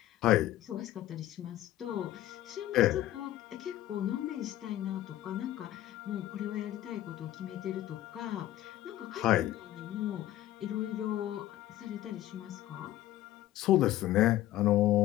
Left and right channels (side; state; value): right; quieter; 14.2 dB